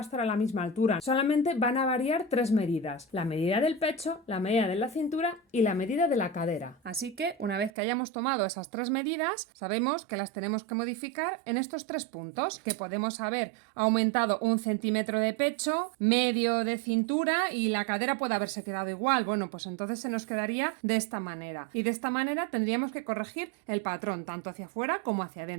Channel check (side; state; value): left; drops out; at 7.7 s